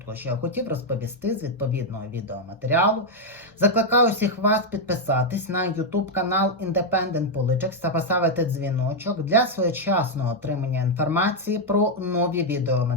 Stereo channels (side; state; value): both; normal; correlation 0.00